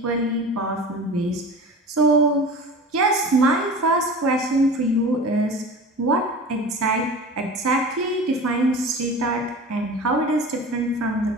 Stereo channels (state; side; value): normal; both; correlation 0.35